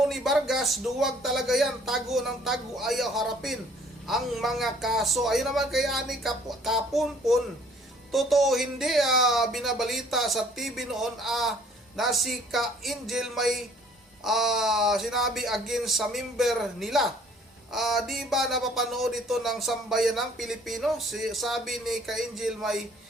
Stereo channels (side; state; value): both; normal; correlation 0.57